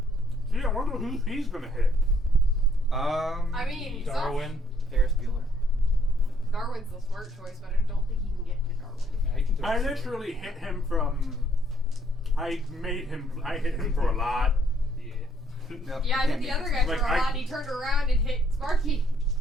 Gee, I wonder who he's gonna hit. I mean, Darwin. Ferris Bueller. Darwin's the smart choice, but I don't think he can get to Darwin. Yeah, he can do I it. literally hit him from. I hit him for a lot. Yeah. Nope, Yeah, I you hit the can't other make guy it. for Like, a I- lot, and he turned around and hit Sparky.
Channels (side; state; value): both; normal; correlation 0.66